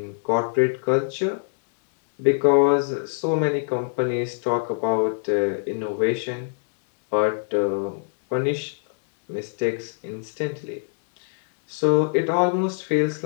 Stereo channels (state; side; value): silent; right; digital silence